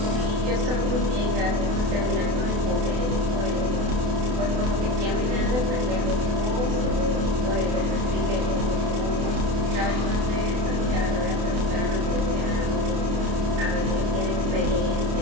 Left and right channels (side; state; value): left; late; 28 ms